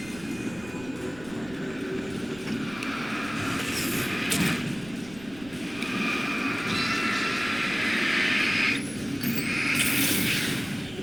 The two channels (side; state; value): right; noise; rumble, 19 dB below the sound